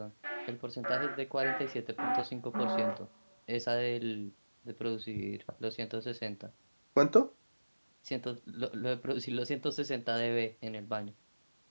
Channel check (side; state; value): both; inverted; correlation -1.00